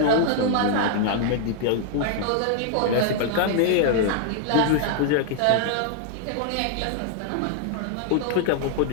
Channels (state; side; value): different; both; correlation 0.00